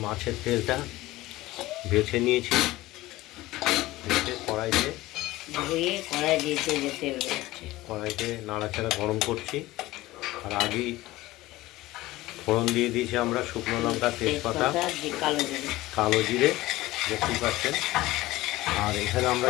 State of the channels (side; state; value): right; quieter; 18.0 dB